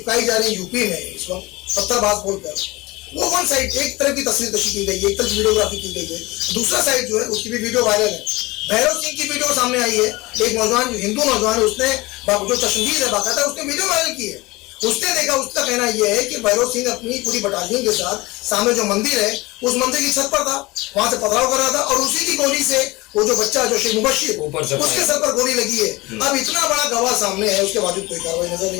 जा रही यूपी में इस वक्त पत्थरबाज बोलकर, वो वन साइड एक तरफ की तस्वीर कशी की गई है, एक तरफ वीडियोग्राफी की गई है, दूसरा साइड जो है उसकी भी वीडियो वायरल है। भैरव सिंह की वीडियो सामने आई है, एक नौजवान जो हिंदू नौजवान है, उसने जो चश्मदीद है बाकायदा उसने वीडियो वायरल की है। उसने देखा, उसका कहना यह है कि भैरव सिंह अपनी पूरी बटालियन के साथ सामने जो मंदिर है उस मंदिर की छत पर था, वहां से पथराव कर रहा था और उसी की गोली से वो जो बच्चा जो शेख मुबश्शिर उसके सर पर गोली लगी है। अब इतना बड़ा गवाह सामने है, उसके बावजूद कोई कार्रवाई नजर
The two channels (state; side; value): quieter; right; 21.8 dB